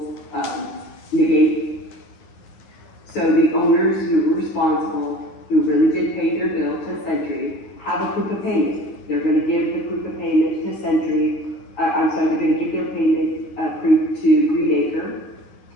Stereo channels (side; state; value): right; late; 9.7 ms